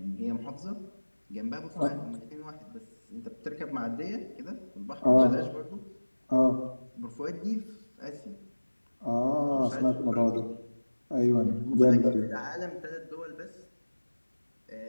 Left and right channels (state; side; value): inverted; both; correlation -1.00